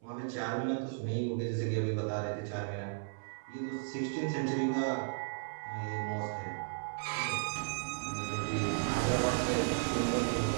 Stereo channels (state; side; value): silent; left; 54 dB below the other